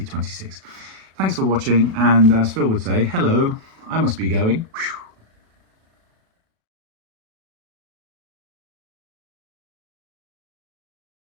Thanks for watching, and as Phil would say, hello, I must be going. Whew.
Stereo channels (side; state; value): left; late; 37 ms